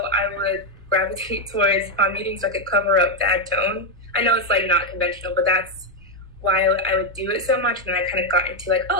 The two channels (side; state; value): both; normal; correlation 0.04